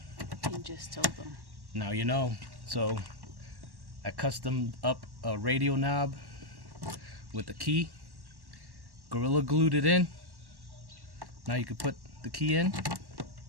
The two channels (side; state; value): left; late; 1.1 ms